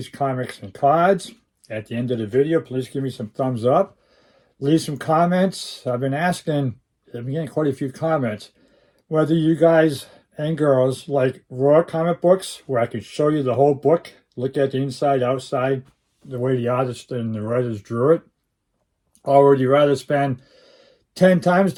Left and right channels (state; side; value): identical; both; correlation 1.00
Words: Comics and Cards. At the end of the video, please give me some thumbs up. Leave some comments. I've been getting quite a few comments, whether you guys and girls like raw comic books, where I can show you the whole book, look at the inside, outside, the way the artist and the writers drew it, or would you rather spend 10 times